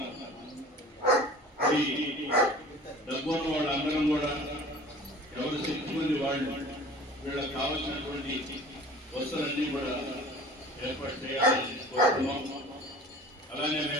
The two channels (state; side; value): normal; both; correlation 0.44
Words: ఈ డబ్బున్న వాళ్ళందరం కూడా ఎవరు శక్తి మంది వాళ్ళు వీళ్ళకి కావాల్సినటువంటి వస్తువులన్నీ కూడా ఏర్పాటు చేయాలని కోరుతున్నాం. అలానే